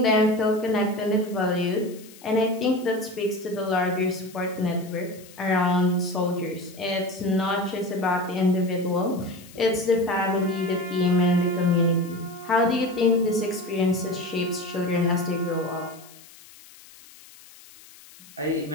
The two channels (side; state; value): left; noise; hiss, 22 dB below the sound